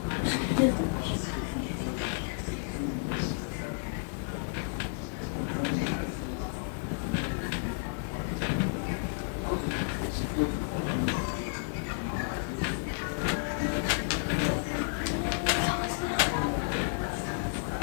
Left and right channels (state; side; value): silent; right; digital silence